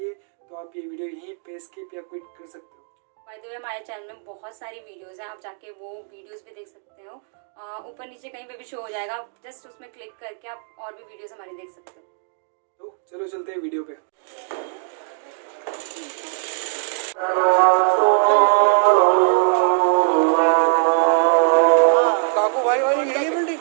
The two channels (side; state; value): left; silent; digital silence